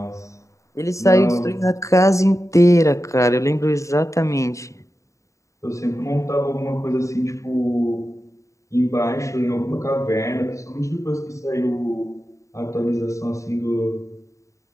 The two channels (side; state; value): right; late; 0.15 ms